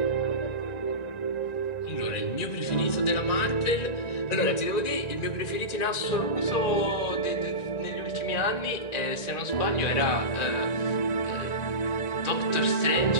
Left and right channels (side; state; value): right; late; 1.9 ms